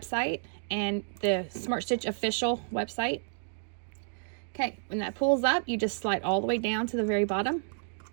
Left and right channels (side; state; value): left; silent; digital silence